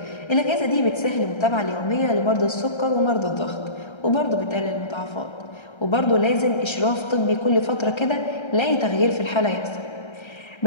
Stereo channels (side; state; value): right; late; 1.3 ms